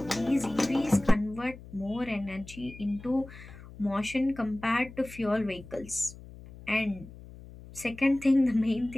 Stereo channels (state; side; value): noise; left; hum, 17 dB below the sound